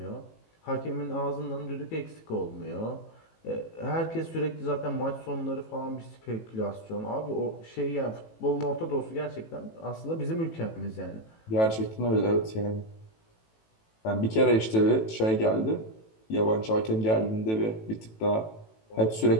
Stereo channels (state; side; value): late; right; 18 ms